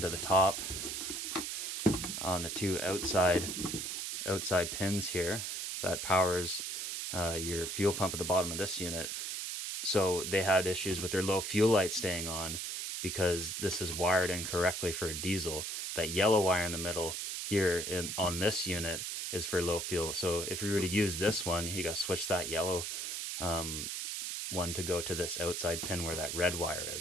to the top on the two outside pins here that powers your fuel pump at the bottom of this unit. So they had issues with their low fuel light staying on because this is wired incorrectly for a diesel. That yellow wire in the middle here on this unit is for low fuel. So if you were to use this one, you got to switch that yellow one to go to this outside pin where that red wire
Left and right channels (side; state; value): right; noise; hiss, 4 dB below the sound